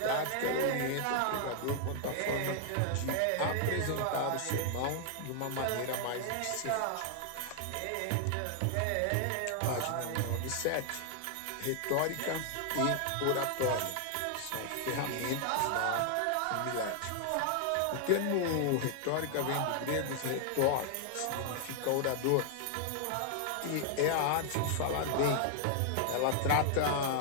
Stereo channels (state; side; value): different; both; correlation 0.00